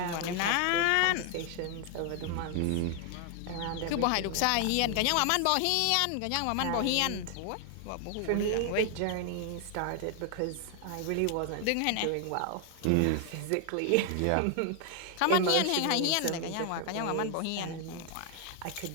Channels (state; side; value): different; both; correlation 0.00